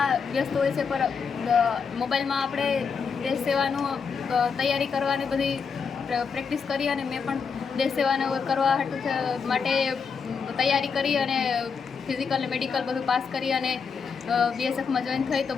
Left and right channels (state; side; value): quieter; right; 5.8 dB